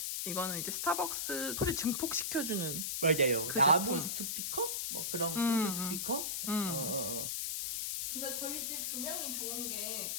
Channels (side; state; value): left; noise; hiss, 1 dB below the sound